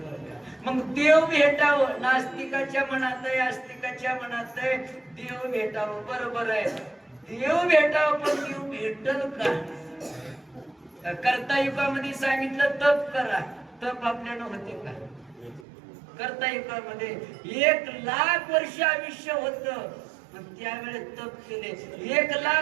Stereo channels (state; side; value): drops out; left; at 15.7 s